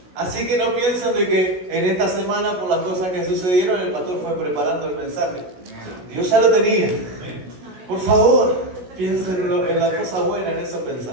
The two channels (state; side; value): late; left; 16 ms